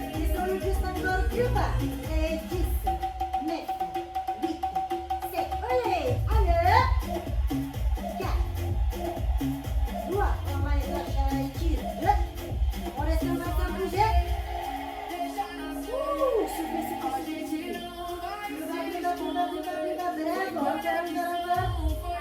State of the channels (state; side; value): identical; both; correlation 1.00